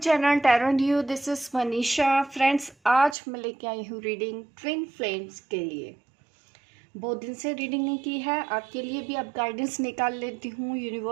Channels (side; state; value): left; drops out; at 3.2 s